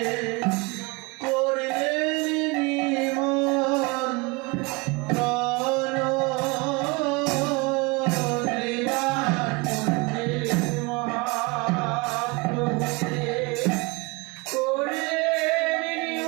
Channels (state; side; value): quieter; left; 26.7 dB